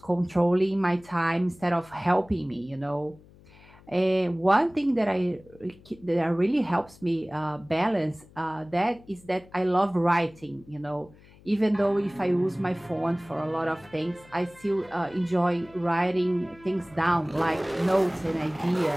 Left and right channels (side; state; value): left; noise; hum, 25 dB below the sound